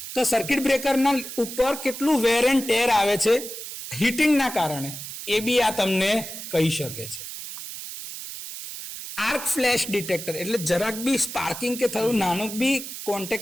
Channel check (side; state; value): right; noise; hiss, 9 dB below the sound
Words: તો સર્કિટ બ્રેકરના ઉપર કેટલું વેર એન્ડ ટેર આવે છે હીટિંગના કારણે, એ બી આ તમને કહી શકે છે. આર્ક ફ્લેશ ડિટેક્ટર એટલે જરાક બી સ્પાર્કિંગ કે થયું નાનું બી